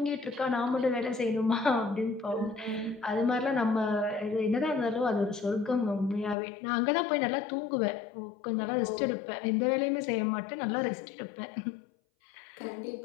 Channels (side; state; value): right; drops out; at 6.4 s